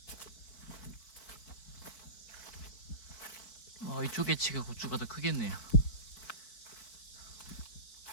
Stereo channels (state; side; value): late; right; 4.6 ms